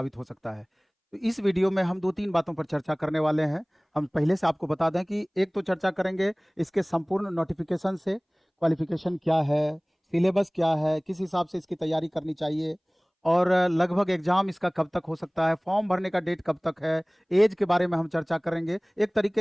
हो सकता है। तो इस वीडियो में हम 2-3 बातों पर चर्चा करने वाले हैं। हम पहले से आपको बता दें कि एक तो चर्चा करेंगे इसके संपूर्ण नोटिफिकेशन से, क्वालिफिकेशन क्या है, सिलेबस क्या है, किस हिसाब से इसकी तैयारी करनी चाहिए और लगभग एग्जाम इसका कब तक हो सकता है, फॉर्म भरने का डेट कब तक है, एज के बारे में हम चर्चा करेंगे। एक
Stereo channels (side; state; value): both; identical; correlation 1.00